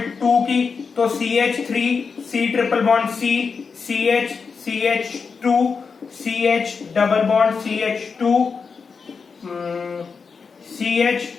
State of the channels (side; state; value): right; quieter; 5.3 dB